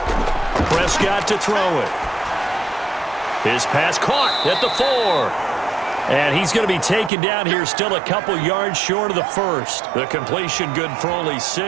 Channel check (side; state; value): left; drops out; at 7.1 s